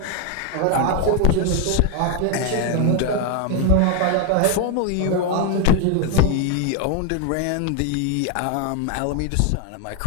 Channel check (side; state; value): both; different; correlation 0.01